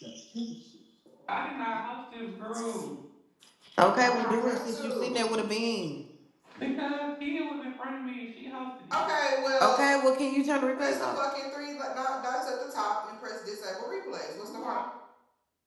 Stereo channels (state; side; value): identical; both; correlation 1.00